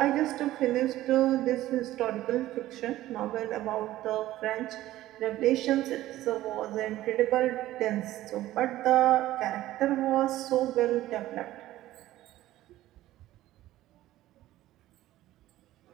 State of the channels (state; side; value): quieter; left; 15.1 dB